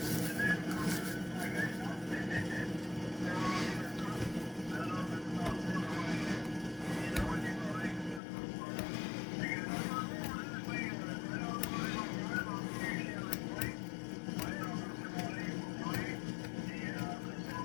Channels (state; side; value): drops out; right; at 8.2 s